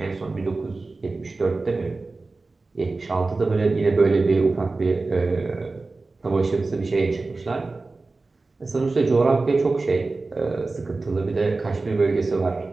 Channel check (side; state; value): left; quieter; 3.6 dB